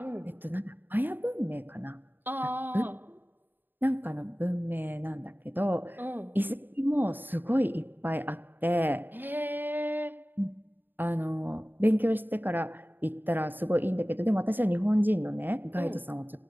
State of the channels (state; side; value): late; left; 0.093 ms